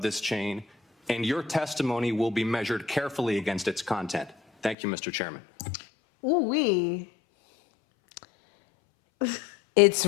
chain, and your testimony will be measured carefully against its content. Thank you, Mr. Chairman. Ooh-wee. It's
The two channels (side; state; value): right; drops out; at 4.8 s